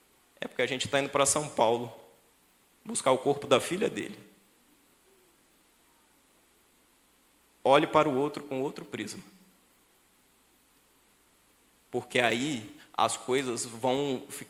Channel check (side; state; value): both; identical; correlation 1.00